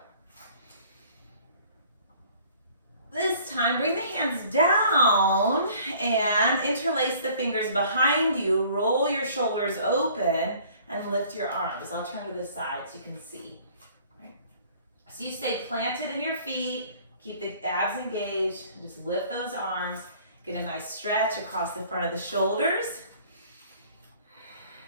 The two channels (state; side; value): inverted; both; correlation -0.54